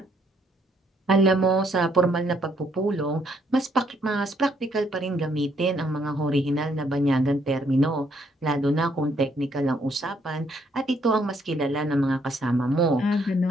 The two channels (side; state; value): both; normal; correlation 0.70